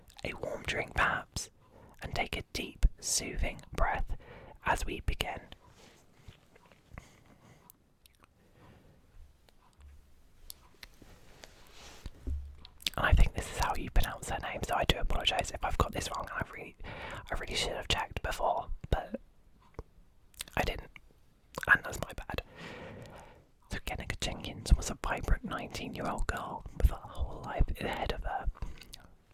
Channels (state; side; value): identical; both; correlation 1.00